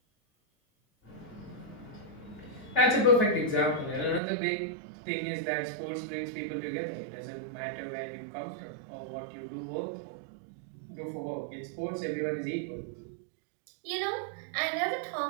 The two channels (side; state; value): left; drops out; at 4.2 s